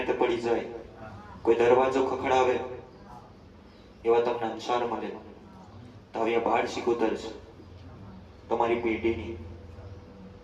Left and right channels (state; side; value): identical; both; correlation 1.00